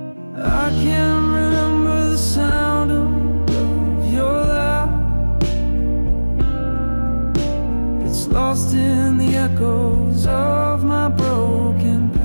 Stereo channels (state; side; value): inverted; both; correlation -1.00